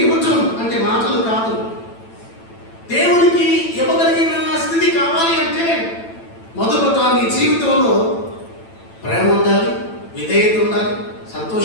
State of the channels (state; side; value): late; right; 9.0 ms